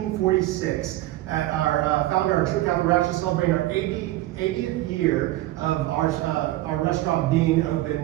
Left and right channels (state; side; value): quieter; left; 16.5 dB